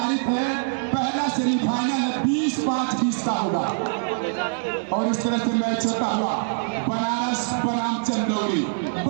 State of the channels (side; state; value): left; silent; 63 dB below the other